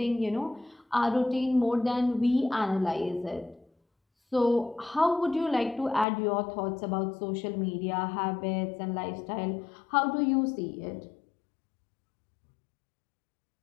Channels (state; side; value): drops out; right; at 6.1 s